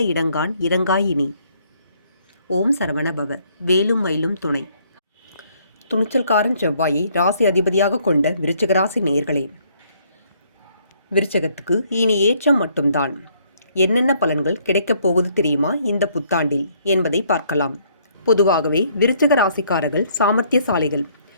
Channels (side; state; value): both; inverted; correlation -0.66